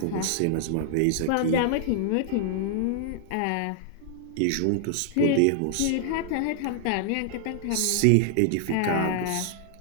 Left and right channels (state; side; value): different; both; correlation -0.01